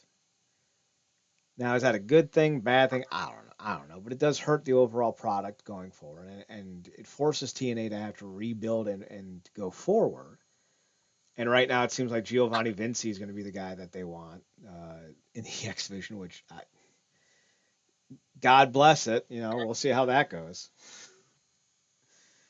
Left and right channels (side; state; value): both; identical; correlation 1.00